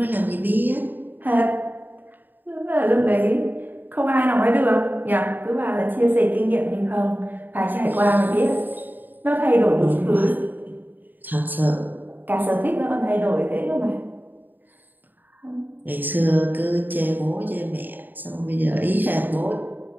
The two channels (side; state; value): left; late; 0.089 ms